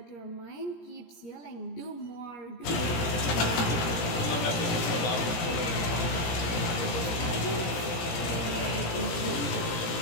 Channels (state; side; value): late; right; 17 ms